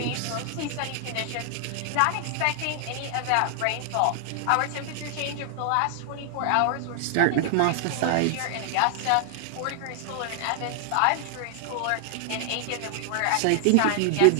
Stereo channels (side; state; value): both; different; correlation 0.00